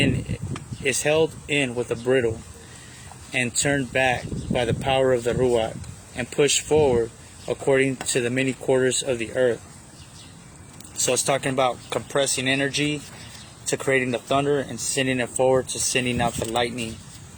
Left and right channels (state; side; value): identical; both; correlation 1.00